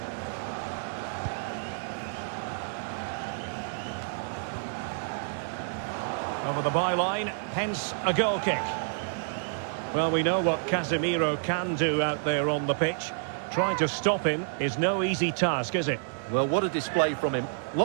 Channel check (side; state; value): left; silent; 59 dB below the other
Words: Over the byline, hence a goal kick. Well, we know what Casemiro can do out there on the pitch. Trying to stop him is no easy task, is it? Well, what a display from him.